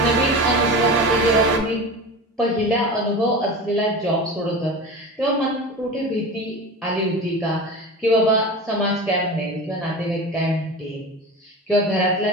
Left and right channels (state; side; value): normal; both; correlation 0.30